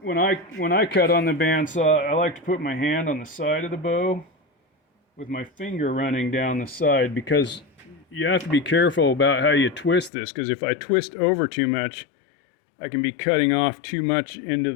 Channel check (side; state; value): right; drops out; at 10.1 s